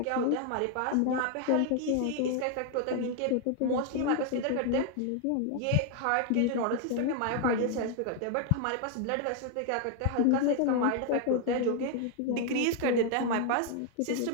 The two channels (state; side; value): different; both; correlation 0.00